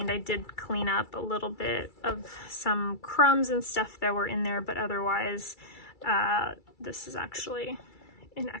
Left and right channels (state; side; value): late; right; 2.3 ms